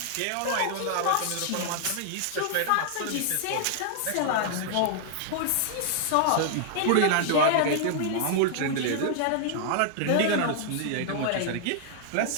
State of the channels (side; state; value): both; different; correlation -0.01